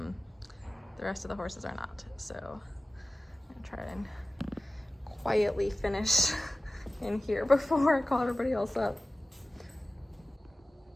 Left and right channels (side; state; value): both; normal; correlation 0.97